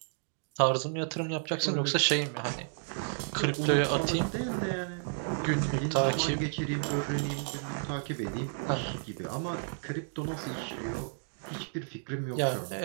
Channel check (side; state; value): left; silent; digital silence